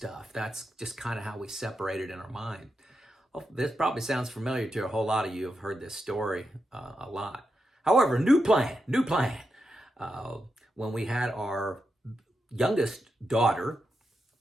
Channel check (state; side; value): normal; both; correlation 0.87